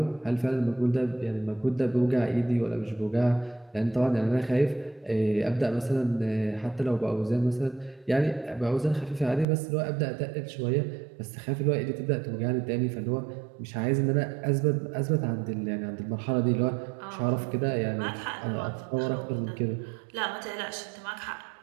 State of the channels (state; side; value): drops out; left; at 9.5 s